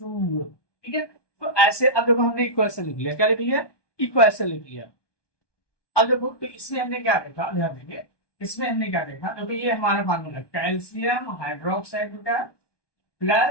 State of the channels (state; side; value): late; right; 1.2 ms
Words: ठीक है, तो ऐसे अब देखो हमने इक्वेशन लिख लिया, क्या लिख लिया, इक्वेशन लिख लिया। अब देखो तो इसमें हमने क्या देखा, ध्यान देंगे इसमें हमने क्या देखा, क्योंकि ये हमारा फार्मूला कैल्शियम हाइड्रोक्साइड का